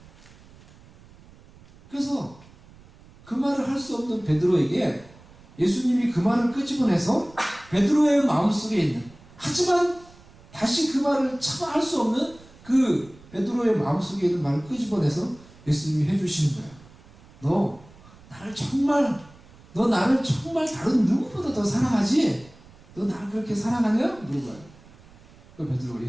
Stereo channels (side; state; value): right; noise; rumble, 24 dB below the sound